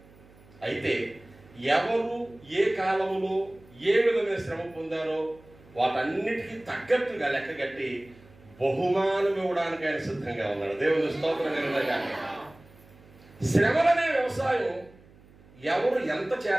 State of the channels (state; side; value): noise; right; hum, 25 dB below the sound